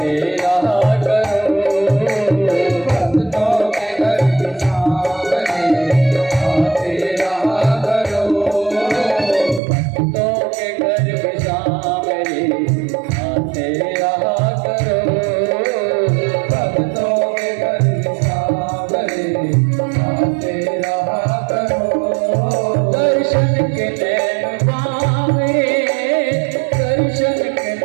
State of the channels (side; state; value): left; drops out; at 9.6 s